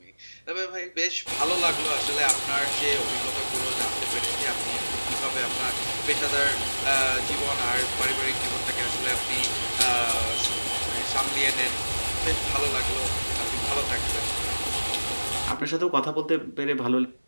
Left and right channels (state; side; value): inverted; both; correlation -1.00